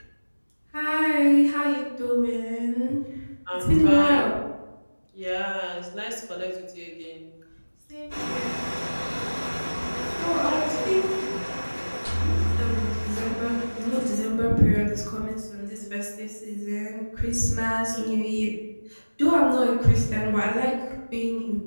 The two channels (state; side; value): inverted; both; correlation -1.00